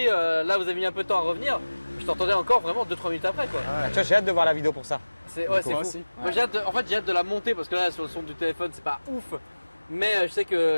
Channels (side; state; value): both; inverted; correlation -1.00